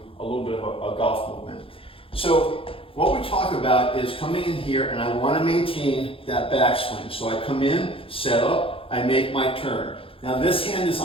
a little bit of a golf movement. So what we talk about is coming in here, and I want to maintain that backswing. So I come in, set up, I make my turn. Now this hand is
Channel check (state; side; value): late; right; 0.27 ms